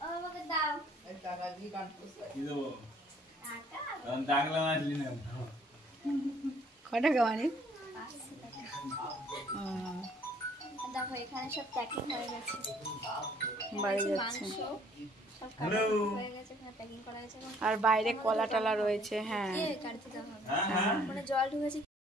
আমাকে দাও টাকা দিয়ে কি দেবো? ডাকলাম আসলি না। কটা গাওয়ানি? দেখো এখানে সব প্যাকিং হয়ে গেছে, বাড়ি যাচ্ছে। মাংস সব কাটা হয়ে গেছে, এখানে প্যাকিং করা গেছে। আর বাইরে কলা টলা রয়েছে। হ্যাঁ, কাটতে দেওয়া হবে, মানে জল ঢুকেছে।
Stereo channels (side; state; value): both; normal; correlation 0.60